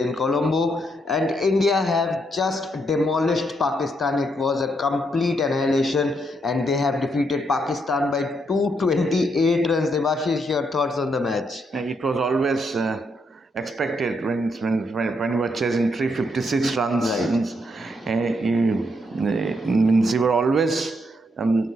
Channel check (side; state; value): both; normal; correlation 0.77